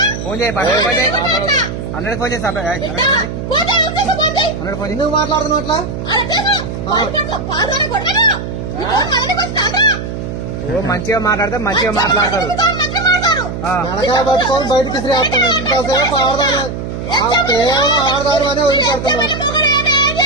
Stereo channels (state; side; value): noise; right; hum, 6 dB below the sound